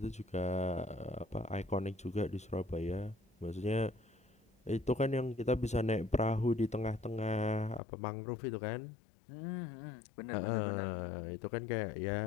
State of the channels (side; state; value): right; drops out; at 7.8 s